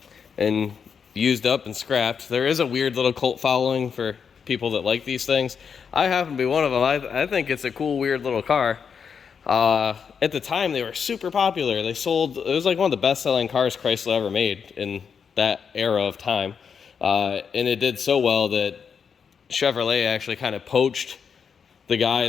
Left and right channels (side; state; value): right; quieter; 6.6 dB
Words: and used up and scrapped. There is a weird little cult following for people that like these things. I happen to be one of them. I think it's a cool, weird little car. At the time, they were super popular. They sold, it was like one of the best-selling cars Chrysler ever made in that era of time. And it did so well that Chevrolet actually kind of poached the